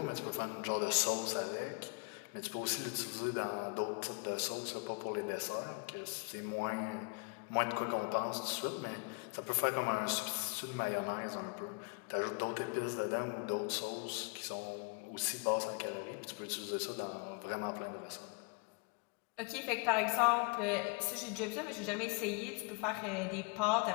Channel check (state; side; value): quieter; right; 31.7 dB